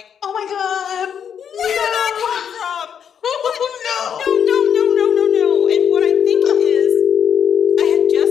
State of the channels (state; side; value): quieter; right; 8.1 dB